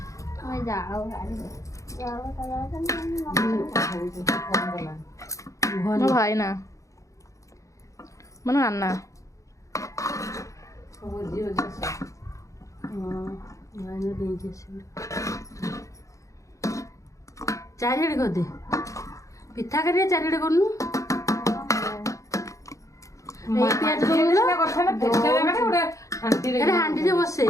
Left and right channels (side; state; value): right; late; 0.15 ms